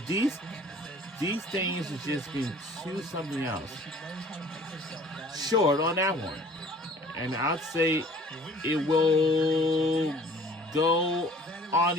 things are just being too something else. Short on that one. And I'd say it will go on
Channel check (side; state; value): both; normal; correlation 0.51